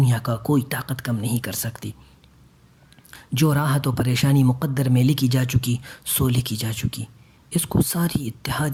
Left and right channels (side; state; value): both; identical; correlation 1.00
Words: کا کوئی طاقت کم نہیں کر سکتی۔ جو راحت و پریشانی مقدر میں لکھی جا چکی سو لکھی جا چکی، اس کو ساری